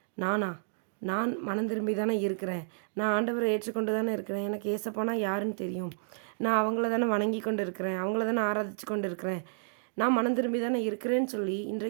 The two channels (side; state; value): left; silent; digital silence